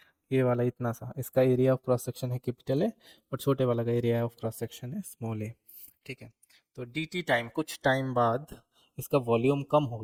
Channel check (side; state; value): both; identical; correlation 1.00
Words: ये वाला इतना सा, इसका एरिया ऑफ क्रॉस सेक्शन है कैपिटल ए और छोटे वाला का एरिया ऑफ क्रॉस सेक्शन है स्मॉल ए। ठीक है, तो डी टी टाइम, कुछ टाइम बाद इसका वॉल्यूम कम हो